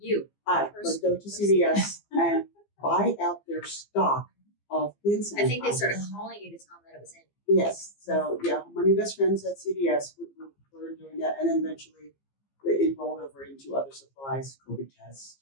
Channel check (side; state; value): right; late; 15 ms